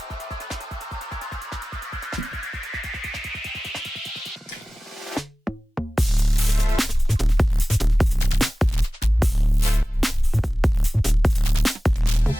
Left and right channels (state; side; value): normal; both; correlation 0.97